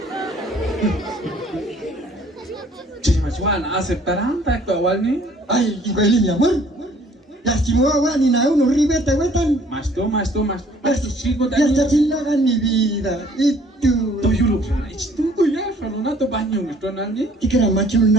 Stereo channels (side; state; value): both; normal; correlation 0.58